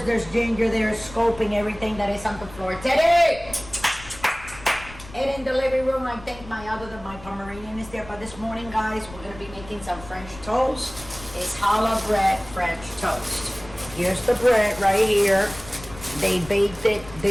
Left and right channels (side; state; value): left; noise; rumble, 17 dB below the sound